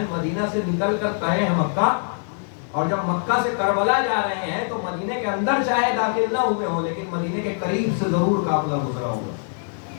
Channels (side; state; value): right; silent; 63 dB below the other